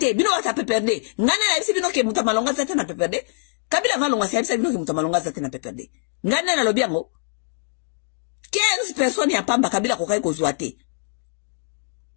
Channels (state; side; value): silent; right; digital silence